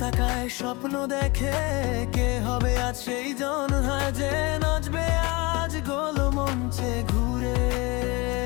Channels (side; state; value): right; quieter; 25.6 dB